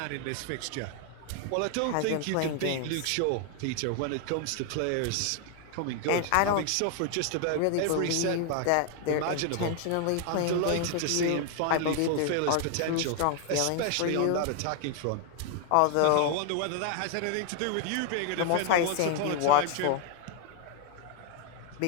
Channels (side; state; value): both; different; correlation 0.00